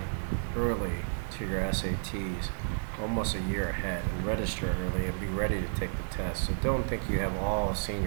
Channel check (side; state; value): left; silent; digital silence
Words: early to your SATs, almost a year ahead, and register early and be ready to take the test. So don't think you have all